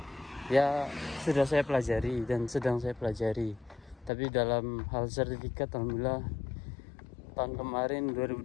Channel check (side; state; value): right; drops out; at 4.1 s